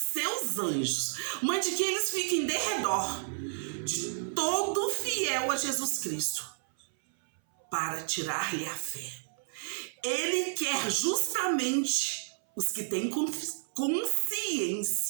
anjos, mande que eles fiquem de redor de todo fiel a Jesus Cristo, para tirar-lhe a fé. Ele quer justamente os que têm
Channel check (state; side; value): silent; left; 57 dB below the other